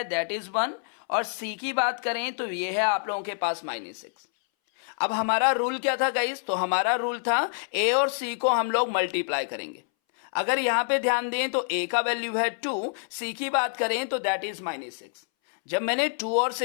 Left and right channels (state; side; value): silent; right; 60 dB below the other